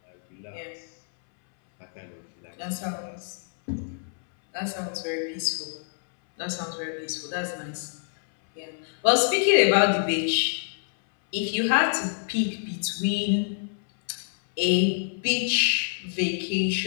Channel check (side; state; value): right; silent; 60 dB below the other